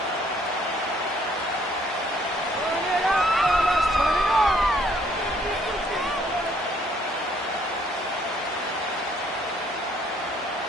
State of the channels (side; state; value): both; normal; correlation 0.64